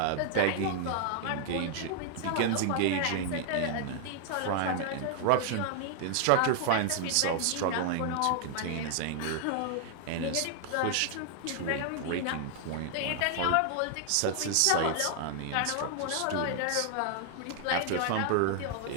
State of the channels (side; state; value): both; different; correlation 0.00